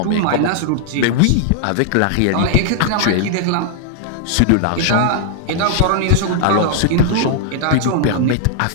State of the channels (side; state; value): both; different; correlation -0.01